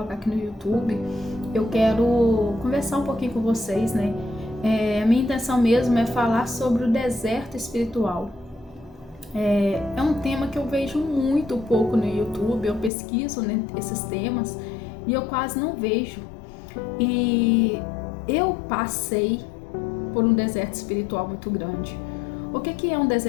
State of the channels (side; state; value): right; drops out; at 12.9 s